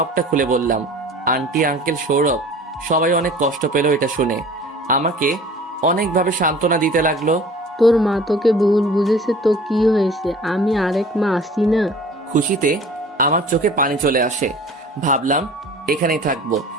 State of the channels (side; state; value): both; normal; correlation 0.45